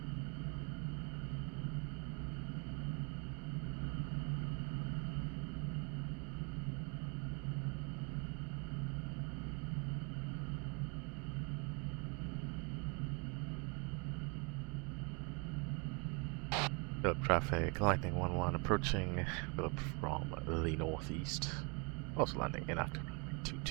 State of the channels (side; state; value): left; quieter; 33.0 dB